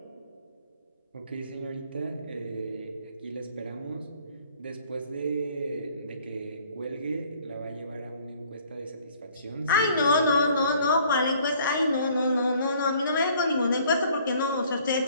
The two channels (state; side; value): inverted; both; correlation -0.58